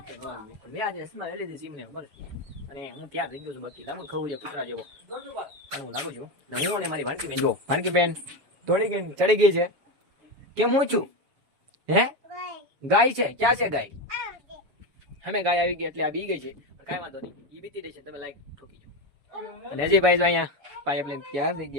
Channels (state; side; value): late; left; 7.2 ms